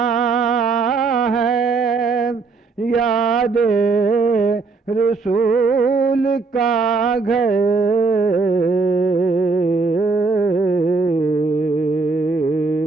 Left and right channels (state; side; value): quieter; left; 4.2 dB